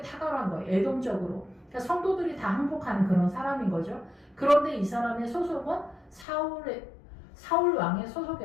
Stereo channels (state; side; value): drops out; right; at 6.2 s